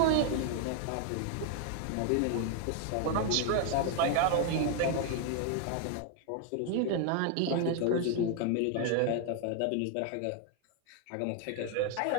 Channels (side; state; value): both; different; correlation 0.00